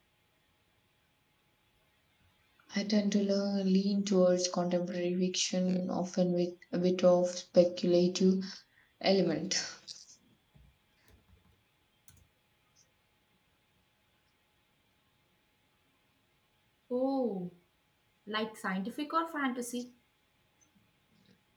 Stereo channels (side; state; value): both; identical; correlation 1.00